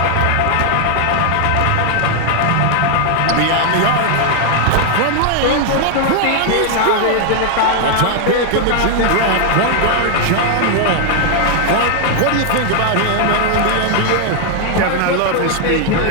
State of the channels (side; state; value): both; different; correlation 0.00